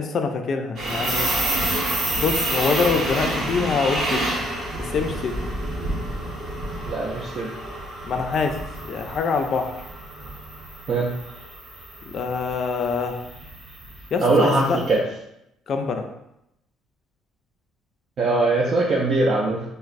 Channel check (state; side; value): normal; both; correlation 0.66